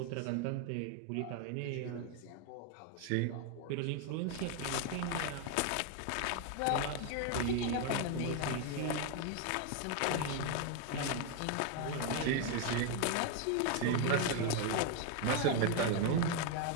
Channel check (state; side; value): different; both; correlation 0.01